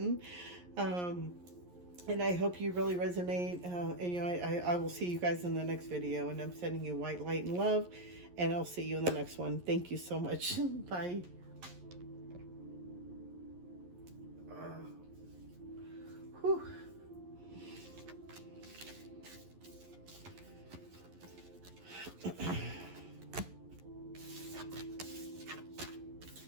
And I hope you really resonate. And you know, I will see you guys in the next video. And I'm sending you white light and love. And I'll see you in the next one. Thank you so much. Bye. Whew.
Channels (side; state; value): left; late; 11 ms